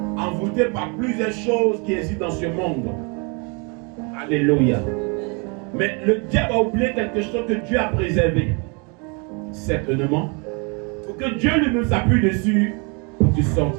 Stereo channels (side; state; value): left; quieter; 33.3 dB